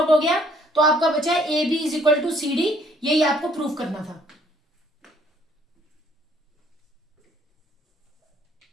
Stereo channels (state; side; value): normal; both; correlation 0.63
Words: हो गया तो आपका बचा है AB is equal to CD। यही आपको प्रूफ करना था।